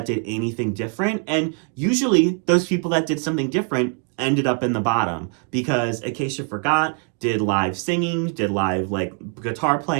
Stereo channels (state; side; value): quieter; left; 39.1 dB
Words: did anything different, and usually those people that did something different ended up in the bottom because Acacia Forgot did live singing, did live like guitar